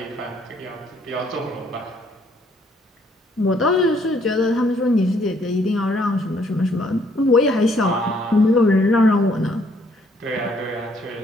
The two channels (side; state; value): both; normal; correlation 0.66